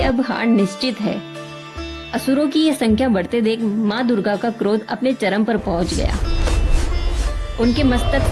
अब हार निश्चित है। असुरों की ये संख्या बढ़ते देख माँ दुर्गा का क्रोध अपने चरम पर पहुंच गया। उनके मस्तक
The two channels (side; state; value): both; identical; correlation 1.00